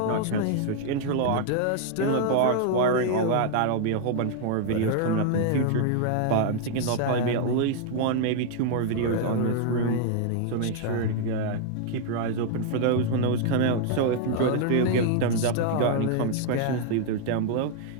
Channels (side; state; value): both; different; correlation 0.00